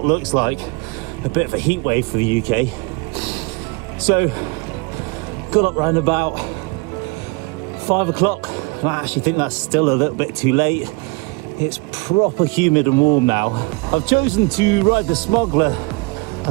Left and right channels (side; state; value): left; quieter; 27.7 dB